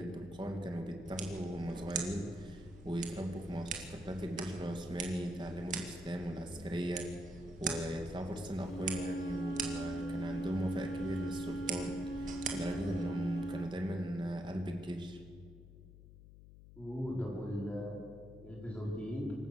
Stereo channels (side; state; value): left; noise; hum, 17 dB below the sound